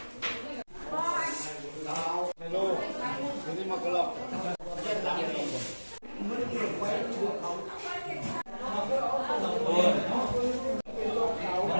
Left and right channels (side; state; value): both; inverted; correlation -1.00